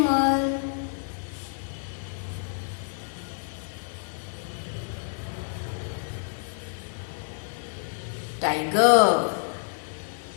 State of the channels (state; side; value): silent; right; digital silence